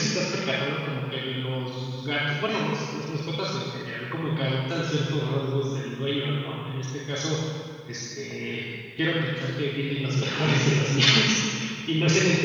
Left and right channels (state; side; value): identical; both; correlation 1.00